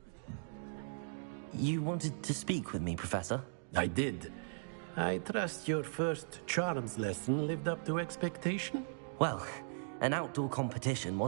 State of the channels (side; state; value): left; silent; digital silence